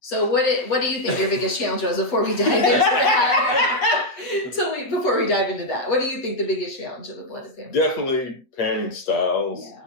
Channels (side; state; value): right; late; 8.1 ms